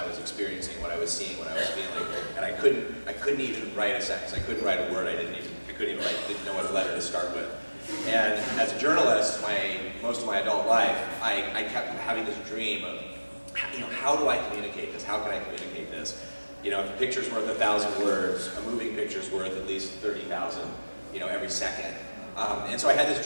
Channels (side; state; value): both; inverted; correlation -1.00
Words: was experiencing, what I was seeing, what I was feeling, and I couldn't even write a sentence. I couldn't write a word. Didn't know what letter to start with. And as a journalist, most of my adult life, I kept having this dream of, how do I communicate this? How can I communicate this? If a picture's worth 1,000 words, a moving picture's worth at least 30,000, every second. And so I had this